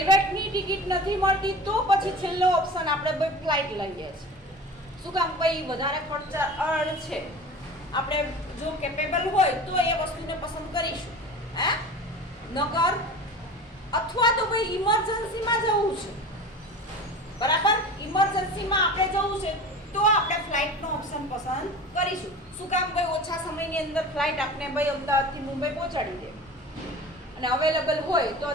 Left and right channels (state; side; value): normal; both; correlation 0.36